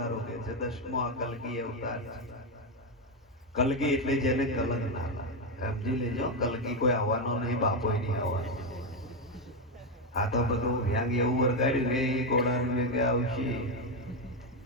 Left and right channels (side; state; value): both; normal; correlation 0.07